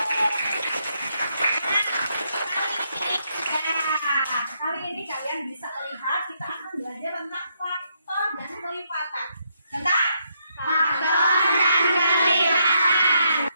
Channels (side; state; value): both; inverted; correlation -0.77